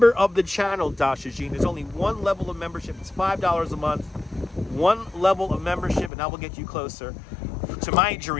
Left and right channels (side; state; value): right; drops out; at 6.1 s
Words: of the channel, Dasha Jean. There's only one level of membership. It's $5 a month. One level of membership, and that will get you closer to my